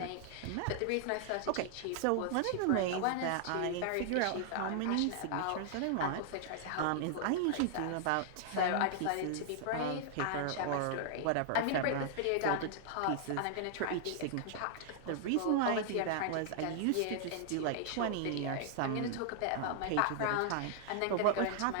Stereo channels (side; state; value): both; different; correlation -0.01